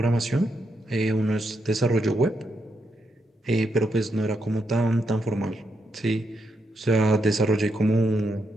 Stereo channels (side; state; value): both; normal; correlation 0.81